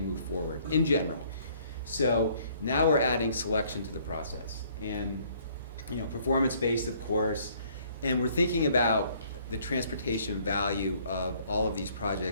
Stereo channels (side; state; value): both; inverted; correlation -0.61